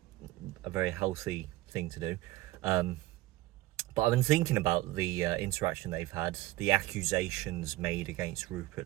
a very healthy thing to do. But I've been thinking about the interaction they've had, the accusations made against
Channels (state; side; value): quieter; left; 18.0 dB